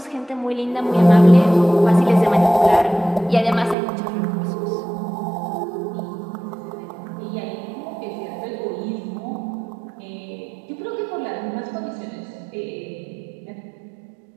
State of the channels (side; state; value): left; drops out; at 3.8 s